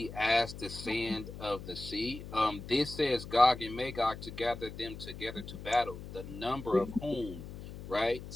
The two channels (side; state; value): left; noise; hum, 12 dB below the sound